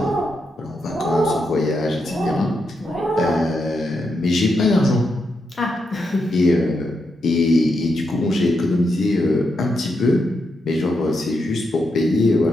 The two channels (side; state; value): both; normal; correlation 0.83